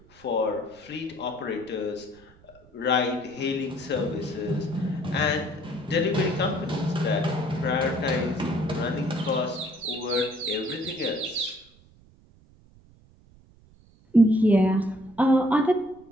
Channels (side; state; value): right; noise; rumble, 27 dB below the sound